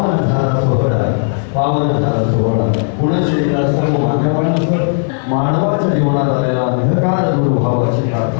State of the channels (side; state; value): right; silent; 64 dB below the other